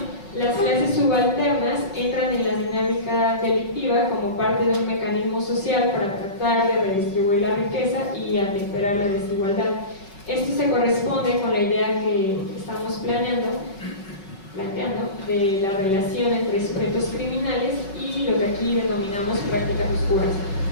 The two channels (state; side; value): late; right; 5.3 ms